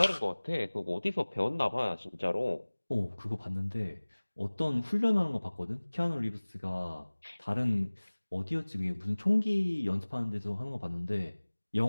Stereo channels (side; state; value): both; inverted; correlation -1.00